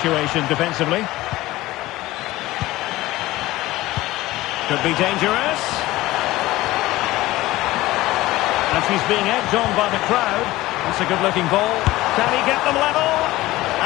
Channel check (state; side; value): quieter; right; 17.8 dB